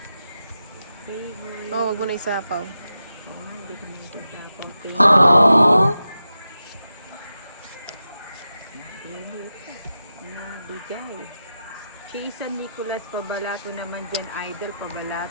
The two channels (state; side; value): inverted; both; correlation -0.90